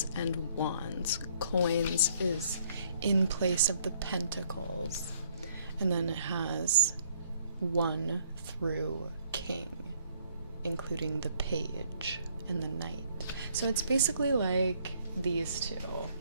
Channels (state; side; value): inverted; both; correlation -0.65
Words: and wands. Coins is in place of the pentacles, and then it has 1 through king, including the page and the knight. So it's basically like these two